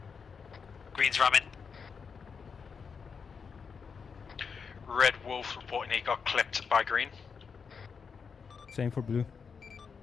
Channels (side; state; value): right; quieter; 5.9 dB